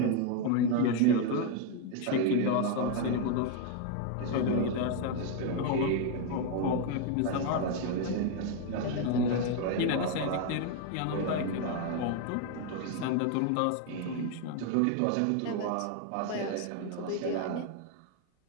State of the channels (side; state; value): both; different; correlation 0.01